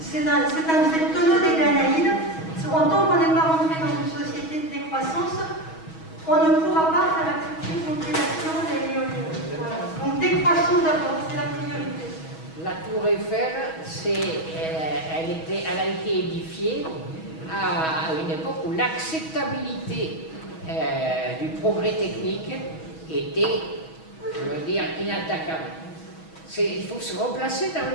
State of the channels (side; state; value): right; late; 6.2 ms